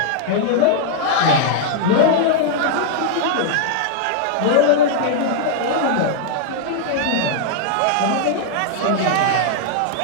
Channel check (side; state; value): both; different; correlation -0.01